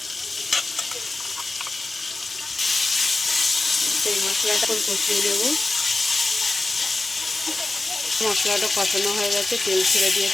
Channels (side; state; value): right; quieter; 3.0 dB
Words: সেই মশলাটা কষিয়ে নেব। মশলাটা কষানো হয়ে গেছে, তেল ছেড়ে